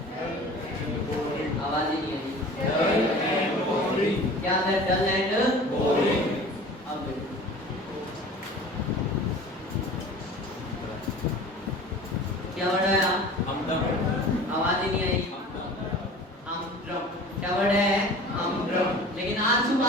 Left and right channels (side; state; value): both; normal; correlation 0.41